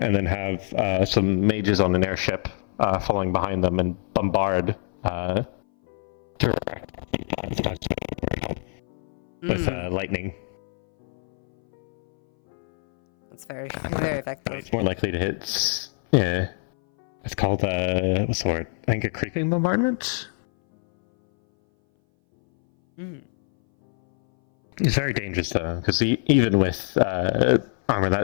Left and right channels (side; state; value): right; silent; 59 dB below the other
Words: then have some mages on an airship following behind them and bombard with lightning. It's very, very effective. It's more likely to hit. Yeah, it's called what's the word? I think a creeping bombardment. It's very dangerous though, because even with armor